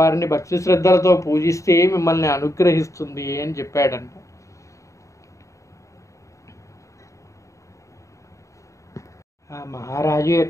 భక్తి శ్రద్ధలతో పూజిస్తే మిమ్మల్ని అనుగ్రహిస్తుంది అని చెప్పాడంట. ఆ మహారాజు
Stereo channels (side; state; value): right; late; 0.15 ms